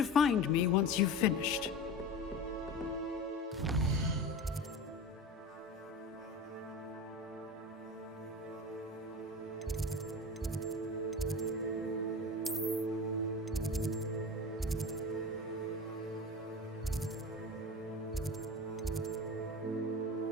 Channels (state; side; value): normal; both; correlation 0.30